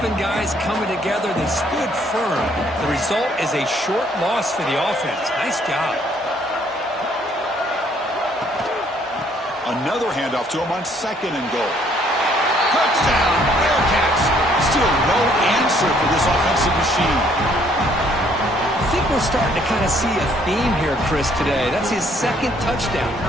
guys coming together. They stood firm. The result is a short loss for the offense. Nice job. Another handoff to him on 2nd and goal. Touchdown, Bearcats. Still no answer for this offensive machine. I think we're starting to kind of see a theme here, Chris, today. That's his 2nd touchdown.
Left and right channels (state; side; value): normal; both; correlation 0.65